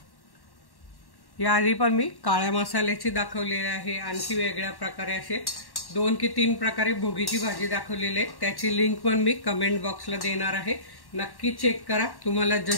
याआधी पण मी काळ्या मसाल्याची दाखवलेली आहे, आणखी वेगळ्या प्रकारे असे 2 की 3 प्रकारे भोगीची भाजी दाखवलेली आहे। त्याची लिंक पण मी कमेंट बॉक्सला देणार आहे, नक्की चेक करा। तुम्हाला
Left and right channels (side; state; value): right; late; 1.1 ms